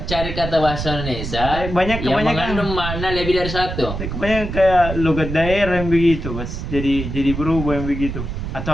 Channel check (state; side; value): noise; right; rumble, 6 dB below the sound